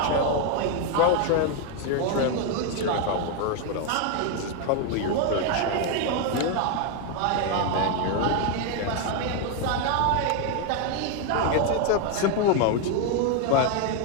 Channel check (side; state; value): both; different; correlation 0.01